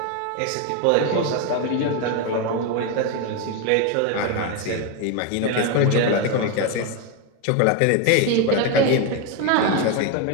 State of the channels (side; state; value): both; different; correlation 0.02